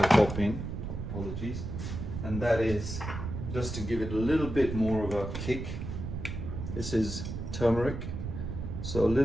pop in, apologies, and that is, just to give it a little bit more of a kick, this is turmeric, so a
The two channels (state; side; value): noise; right; rumble, 6 dB below the sound